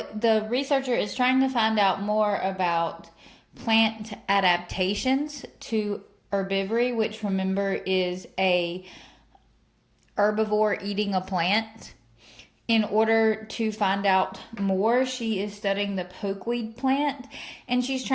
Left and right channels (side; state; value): both; identical; correlation 1.00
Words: researcher is trying to find out more about plant adaptations to herbivory, which remember is a herbivore eating a plant. In order to find out more, she is studying the pokeweed plant and she's